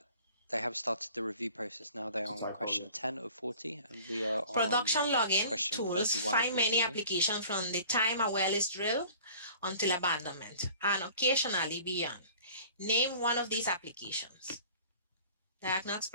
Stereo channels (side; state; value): both; inverted; correlation -0.47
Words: They have started the review process now. They are on question 10 of 40, and we are on Production logging question tools 31 find of many 42. applications from the time a well is drilled until abandonment, and occasionally beyond. Name one of these applications. Diagnose